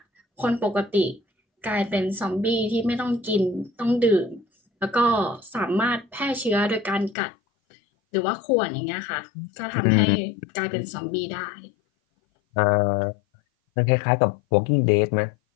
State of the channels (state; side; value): drops out; right; at 7.2 s